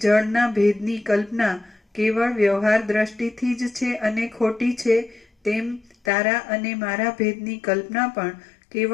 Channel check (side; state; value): right; drops out; at 6.1 s